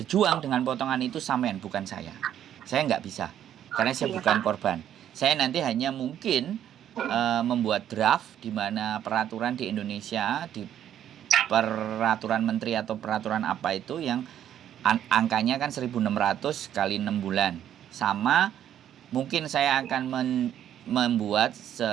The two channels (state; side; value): quieter; left; 10.5 dB